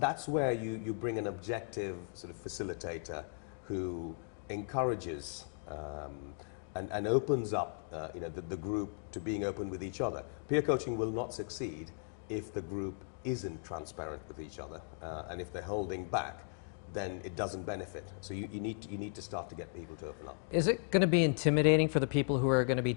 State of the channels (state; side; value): silent; right; 53 dB below the other